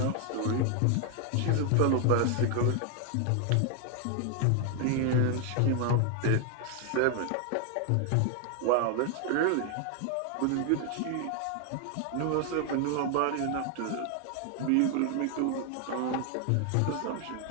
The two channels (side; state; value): both; different; correlation 0.00